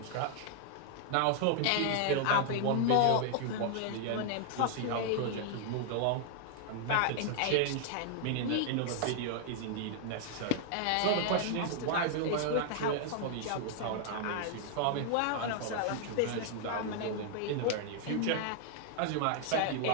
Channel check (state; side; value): different; both; correlation 0.00